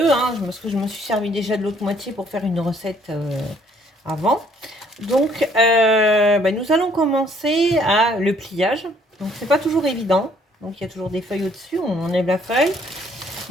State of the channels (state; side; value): normal; both; correlation 0.63